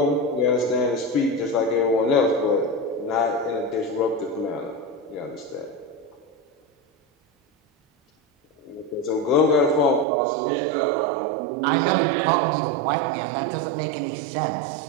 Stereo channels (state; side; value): drops out; left; at 10.1 s